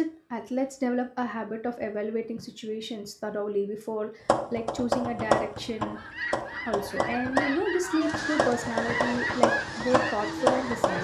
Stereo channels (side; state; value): both; identical; correlation 1.00